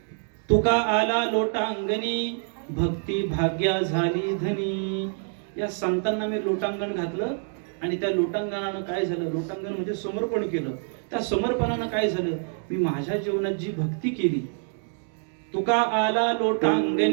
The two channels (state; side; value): silent; left; 56 dB below the other